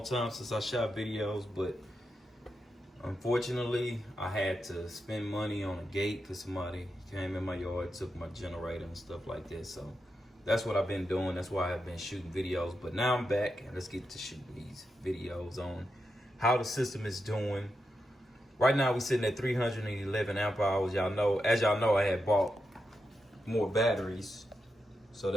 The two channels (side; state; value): both; normal; correlation 0.87